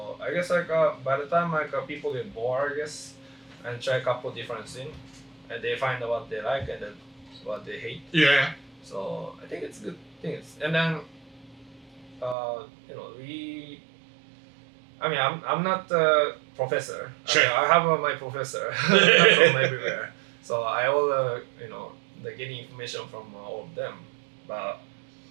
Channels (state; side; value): drops out; left; at 12.4 s